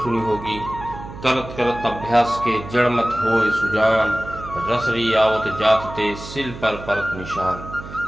सुनी होगी, करत करत अभ्यास के जड़ मत होए सुजान, रसरी आवत जात ते सिल पर परत निशान।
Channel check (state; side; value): noise; right; hum, 13 dB below the sound